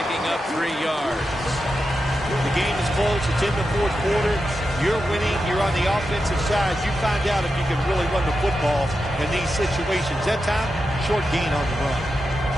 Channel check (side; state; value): both; normal; correlation 0.89